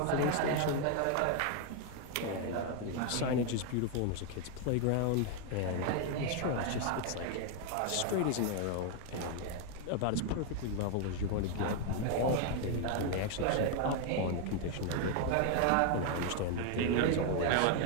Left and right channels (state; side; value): different; both; correlation 0.01